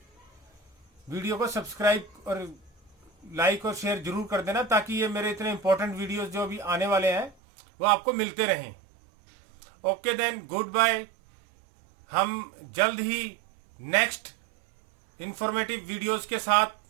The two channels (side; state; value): left; drops out; at 7.4 s